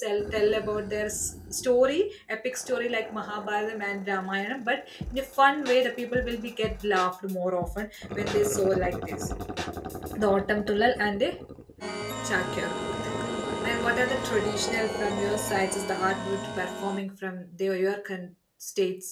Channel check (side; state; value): both; identical; correlation 1.00